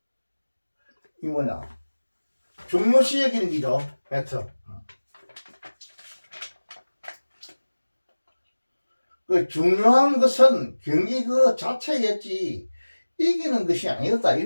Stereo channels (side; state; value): both; inverted; correlation -1.00